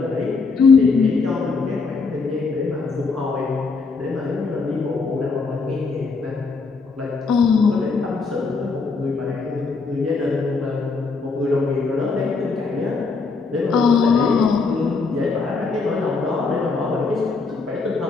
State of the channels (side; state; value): right; quieter; 4.4 dB